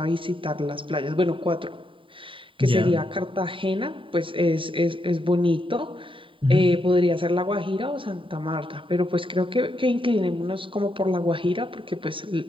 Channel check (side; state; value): left; late; 0.25 ms